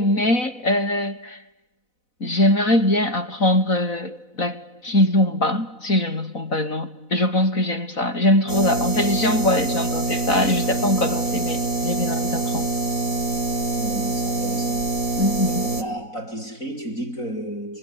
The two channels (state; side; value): late; right; 4.0 ms